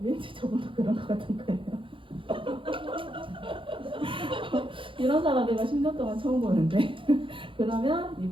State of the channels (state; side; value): late; left; 0.25 ms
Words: 왠지 저분도 그런 것 같은 거예요. 이런 사람 내가 10년 동안 처음 보는데 그러면